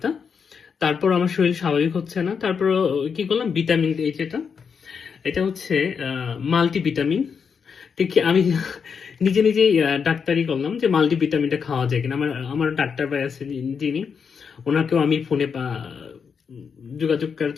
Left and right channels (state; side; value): quieter; right; 6.3 dB